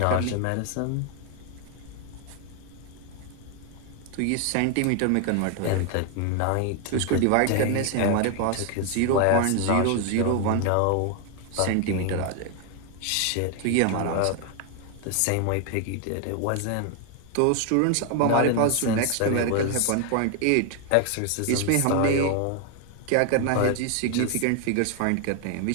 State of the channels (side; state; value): both; different; correlation 0.01